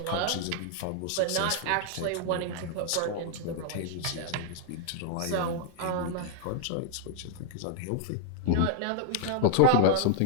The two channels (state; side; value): different; both; correlation -0.01